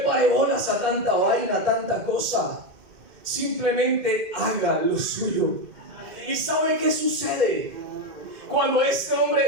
bolas a tanta vaina, a tanta cosa. Simplemente haga lo suyo. ¿Y sabe qué sucede? Cuando este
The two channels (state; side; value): late; left; 2.1 ms